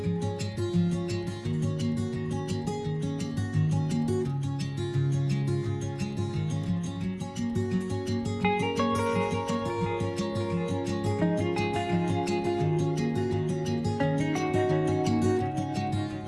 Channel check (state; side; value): identical; both; correlation 1.00